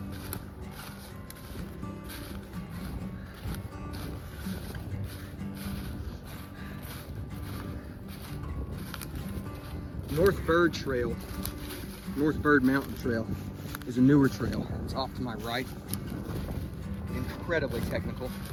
North Bird Mountain Trail is a newer trail. It's off to my right. Incredibly technical.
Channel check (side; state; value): both; identical; correlation 1.00